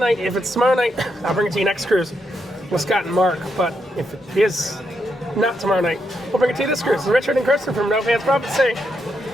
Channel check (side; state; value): both; normal; correlation 0.81